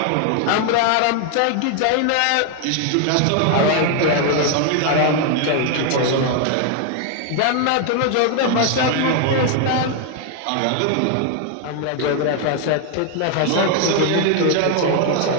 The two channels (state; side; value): different; both; correlation 0.00